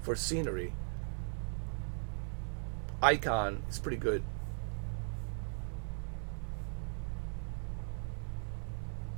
scenery. Icon is pretty good.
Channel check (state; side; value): silent; left; 52 dB below the other